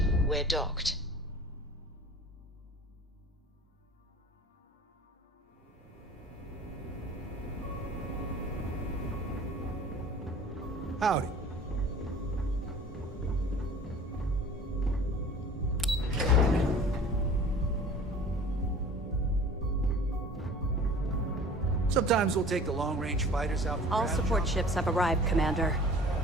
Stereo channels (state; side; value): normal; both; correlation 0.45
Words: We're docked. Howdy. Sometimes we'll take the long-range fighters out for All grab support jobs. ships have arrived, Commander.